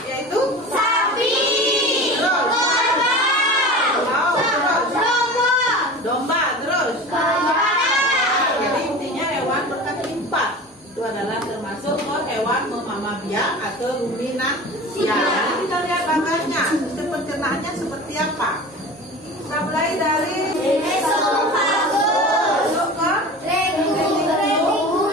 yaitu sapi, domba, terus jadi intinya hewan berkaki 4 itu adalah termasuk hewan memamah biak atau ruminansia. Jadi kita lihat bagannya, sistem pencernaannya seperti apa. Kita mulai dari esofagus masuk ke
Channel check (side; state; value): both; normal; correlation 0.35